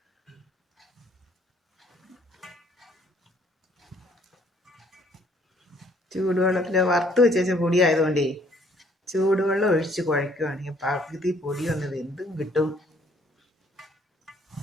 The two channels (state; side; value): normal; both; correlation 0.62